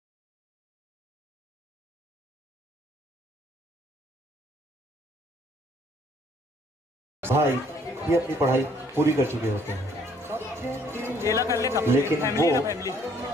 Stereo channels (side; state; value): both; normal; correlation 0.63